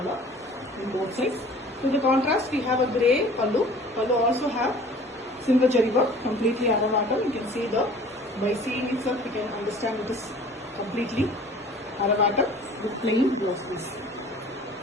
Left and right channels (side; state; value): both; normal; correlation 0.48